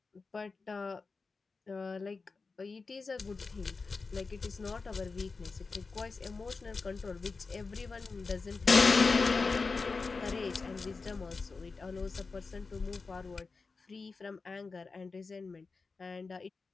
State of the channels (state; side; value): quieter; right; 4.3 dB